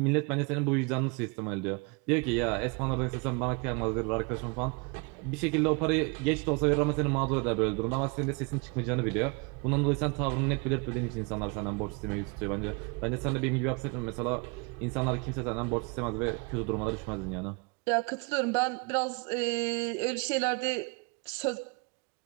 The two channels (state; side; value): quieter; left; 30.7 dB